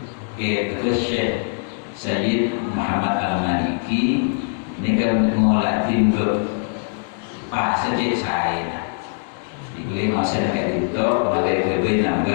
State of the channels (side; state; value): right; silent; digital silence